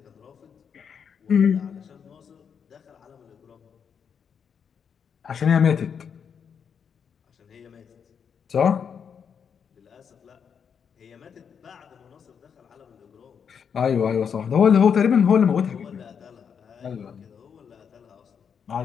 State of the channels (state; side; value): quieter; right; 7.1 dB